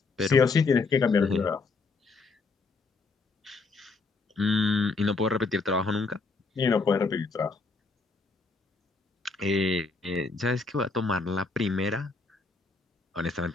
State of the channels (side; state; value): right; quieter; 4.0 dB